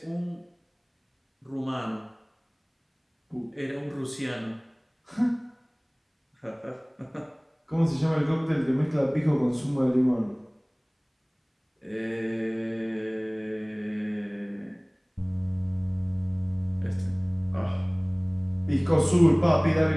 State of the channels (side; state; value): both; identical; correlation 1.00